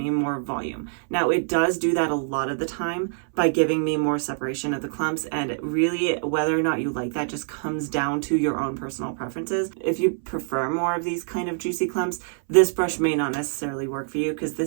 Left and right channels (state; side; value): silent; left; 62 dB below the other